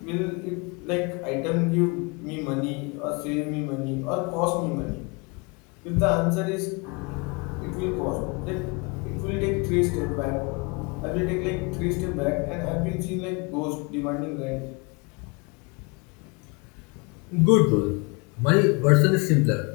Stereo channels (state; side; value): quieter; right; 29.5 dB